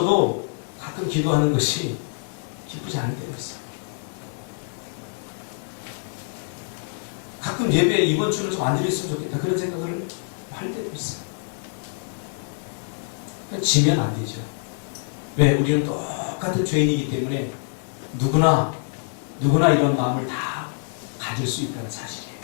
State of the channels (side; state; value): right; silent; 57 dB below the other